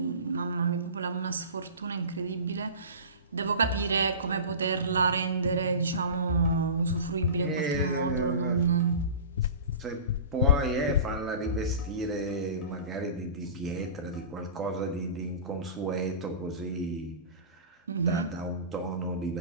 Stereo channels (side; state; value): both; inverted; correlation -0.34